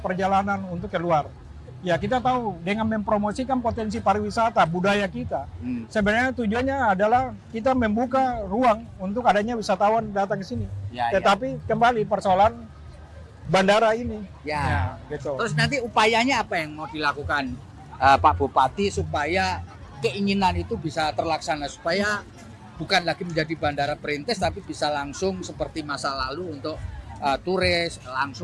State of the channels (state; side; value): identical; both; correlation 1.00